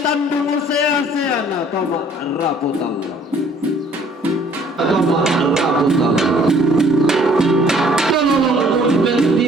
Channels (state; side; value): normal; both; correlation 0.58